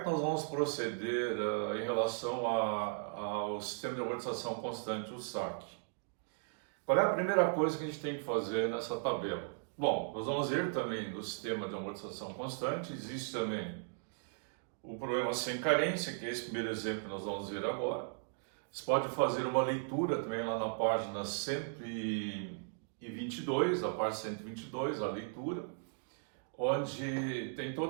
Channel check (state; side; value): silent; left; digital silence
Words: nós vamos proceder em relação ao sistema de amortização constante, o SAC? Qual é a primeira coisa que a gente tem que fazer nessa tabela? Bom, nós vamos ver também no sistema de amortização constante, existe também o problema sem carência, que é esse primeiro exemplo que nós vamos ver agora. Você pode fazer uma leitura também lá na página 122, a parte 122, a leitura, onde tem